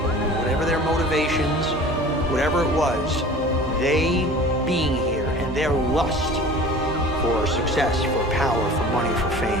Whatever their motivations, whatever it was, they being here and their lust for success, for power, for money, for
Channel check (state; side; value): normal; both; correlation 0.42